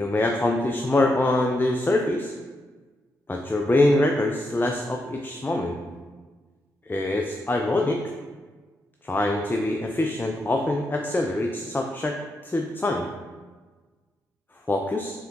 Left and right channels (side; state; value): both; normal; correlation 0.83